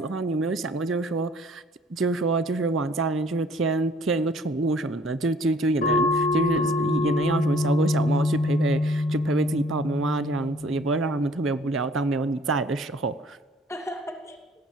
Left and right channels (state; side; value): normal; both; correlation 0.56